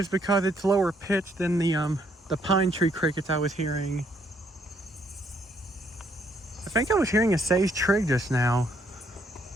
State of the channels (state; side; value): normal; both; correlation 0.70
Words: because it's lower pitched than the pine tree crickets I was hearing. I think I was hearing a sage trig just now.